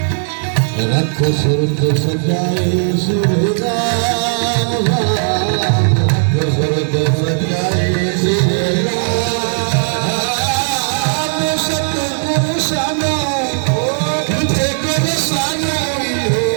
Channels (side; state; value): left; silent; 60 dB below the other